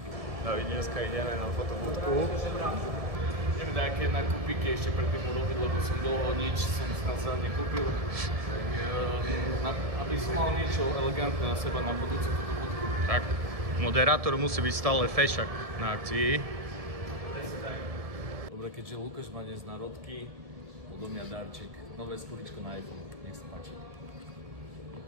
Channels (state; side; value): late; left; 1.7 ms